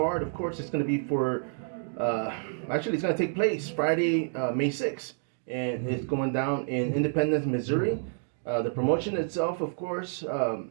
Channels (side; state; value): left; silent; digital silence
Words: Of course, it's going to be for, actually, it's going to take place Friday, May 6th, and it's going down in Independence, Missouri. The promotion itself, of course,